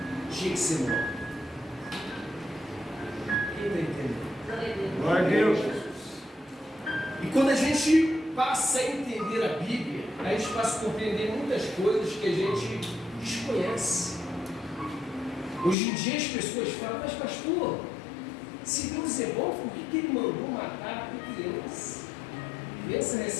tinha que ser morta. Quem está entendendo? Glória a Deus. E quando a gente passa a entender a Bíblia, a gente passa a compreender muitas coisas que a gente desconhece. Hoje em dia as pessoas falam: mas pastor, se Deus é bom, por que Ele mandou matar a criança? Criança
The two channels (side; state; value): right; drops out; at 15.8 s